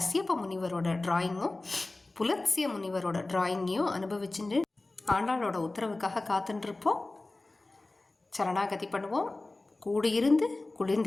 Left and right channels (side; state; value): right; quieter; 3.0 dB